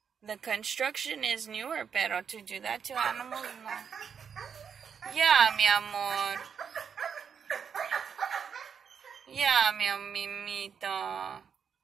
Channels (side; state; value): left; quieter; 7.0 dB